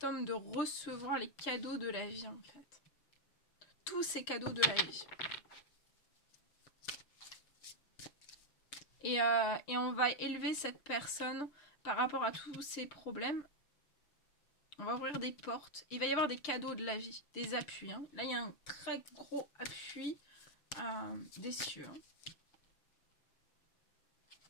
homme de recevoir les cadeaux de la vie, en fait. Tous ces cadeaux de la vie. Et on va élever cette personne par rapport à tous ces problèmes. On va ouvrir des portes. Il va y avoir des cadeaux de la vie, des appuis. Hein. Là, il y a un très gros appui des cieux. Hein.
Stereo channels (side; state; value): right; late; 6.7 ms